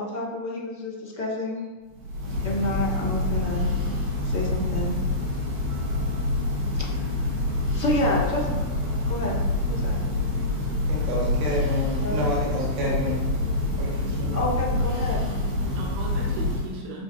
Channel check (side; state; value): left; late; 14 ms